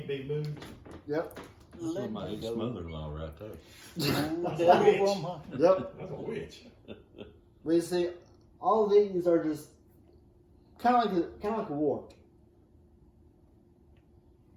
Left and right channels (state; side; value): identical; both; correlation 1.00